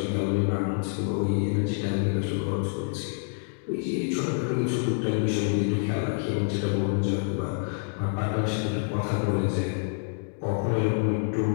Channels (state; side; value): silent; right; digital silence